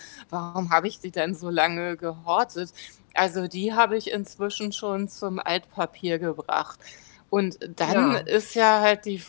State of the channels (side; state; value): right; silent; 61 dB below the other